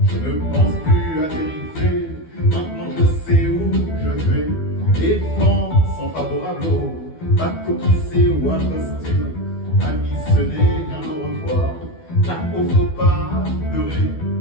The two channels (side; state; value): right; late; 12 ms